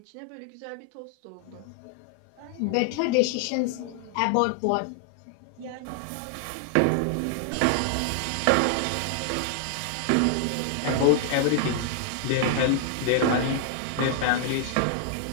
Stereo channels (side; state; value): both; different; correlation 0.00